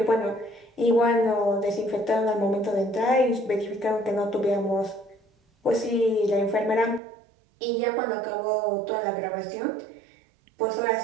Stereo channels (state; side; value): drops out; left; at 7.0 s